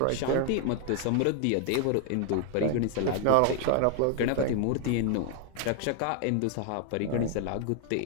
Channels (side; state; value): both; different; correlation 0.00